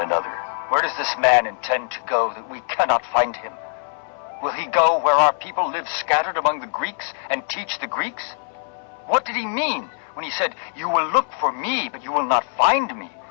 another, "Where does this man intend to go that we cannot find him? Will he go where our people live scattered among the Greeks and teach the Greeks? What did he mean when he said, 'You will look for me, but you will not find me,'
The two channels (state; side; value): silent; right; 64 dB below the other